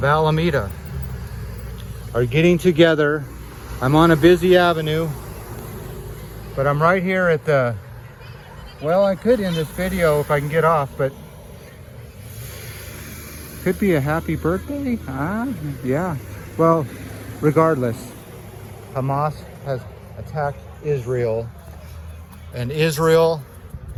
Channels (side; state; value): both; identical; correlation 1.00